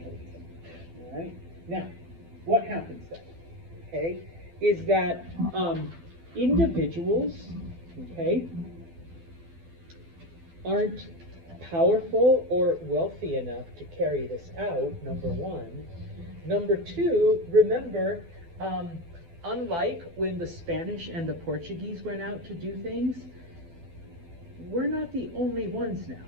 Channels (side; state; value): left; late; 12 ms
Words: All right? Now, what happens then? Okay, is that individuals, okay, aren't powerful or wealthy enough to carry this out, number one. Number two, remember, unlike when the Spanish and the Portuguese went out to do things, we're not the only ones now.